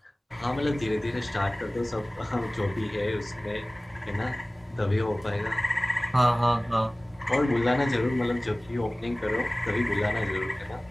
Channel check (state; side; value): normal; both; correlation 0.98